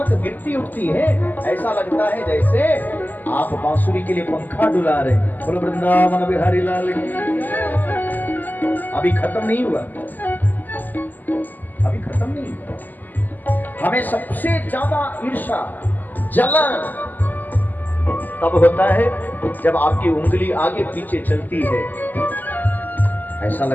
गिरती उठती है, ऐसा लगता है जैसे आप बांसुरी के लिए पंखा डुला रहे हैं। बोलो वृंदावन बिहारी लाल। अभी खत्म नहीं हुआ, अभी खत्म नहीं हुआ। हमें सबसे ज्यादा ईर्ष्या, जलन तब होता है जब आपकी उंगली आगे पीछे चलती है। ऐसा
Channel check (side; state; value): right; late; 0.085 ms